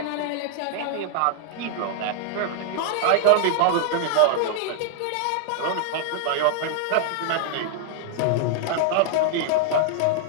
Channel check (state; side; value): different; both; correlation -0.01